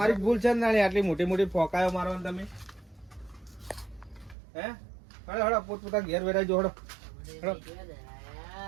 જ ભૂલ છે ને નાની, આટલી મોટી મોટી ફોકાયો મારવાની તમે. હે હળો હળો પોતપોતા ઘેર વેરાઈ જો હળો હળો.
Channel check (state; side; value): drops out; left; at 4.4 s